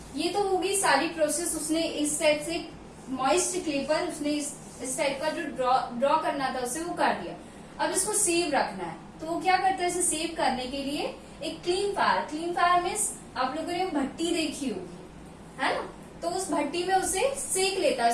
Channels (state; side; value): identical; both; correlation 1.00